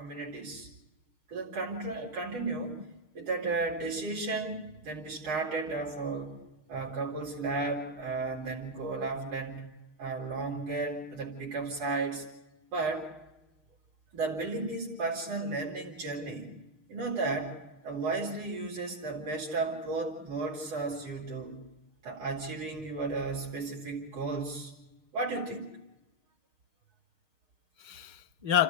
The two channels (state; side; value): late; left; 6.5 ms